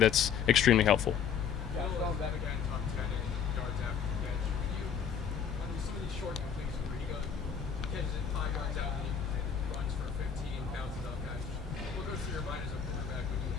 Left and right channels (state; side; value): quieter; right; 7.5 dB